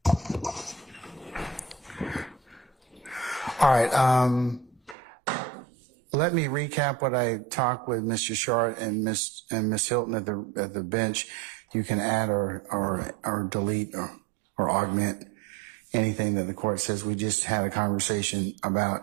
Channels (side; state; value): left; drops out; at 5.0 s